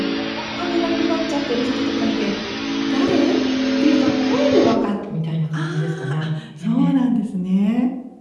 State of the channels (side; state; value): both; identical; correlation 1.00